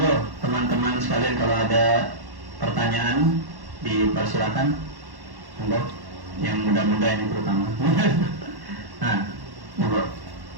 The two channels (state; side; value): late; left; 1.1 ms